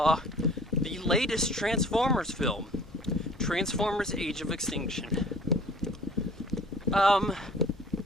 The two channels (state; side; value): normal; both; correlation 0.50